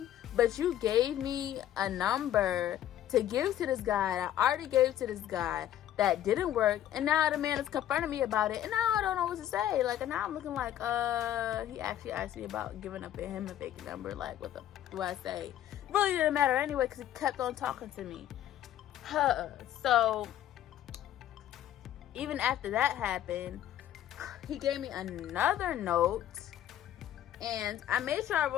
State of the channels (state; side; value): quieter; right; 11.7 dB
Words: but you gave me a number to give to this guy. I already gave to this guy. That didn't work, and now the man is confronting me about it, and now I don't know what to say. Like, and now I'm looking like, he actually asked me about giving up him a fake number. Like, what the do I say? Really didn't matter anyway, because he kept on talking to me. So, even after that happened, he gave me another note, and I made sure I